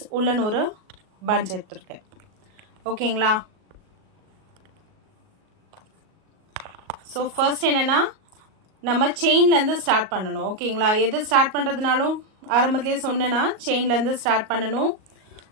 உள்ளன் ஒரு பஞ்ச் எடுத்துருக்கேன். ஓகேங்களா? ஸோ ஃபர்ஸ்ட் என்னென்னா நம்ம செயின்லேருந்து ஸ்டார்ட் பண்ணணும். ஓகேங்களா? எது ஸ்டார்ட் பண்ணுறதுனாலும் ஆரம்பத்துலேயே சொன்னேன்னா செயின்லேருந்து ஸ்டார்ட் பண்ணணும்.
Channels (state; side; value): late; left; 38 ms